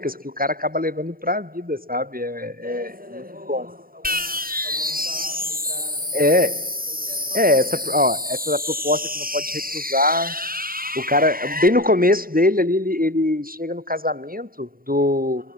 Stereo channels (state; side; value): late; left; 0.42 ms